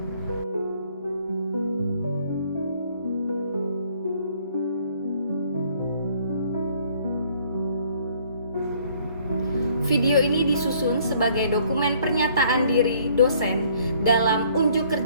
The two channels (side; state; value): both; inverted; correlation -0.61